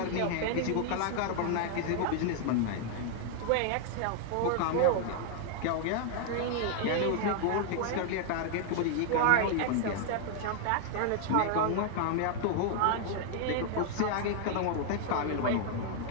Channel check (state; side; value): different; both; correlation 0.00